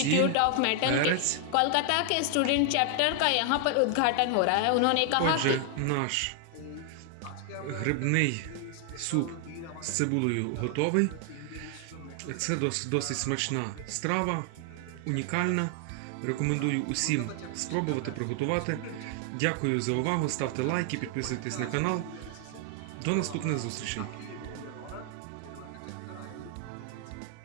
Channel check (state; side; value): different; both; correlation 0.00